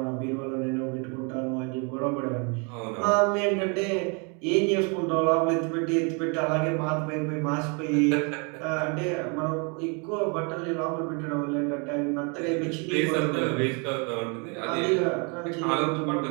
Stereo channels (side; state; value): left; quieter; 34.1 dB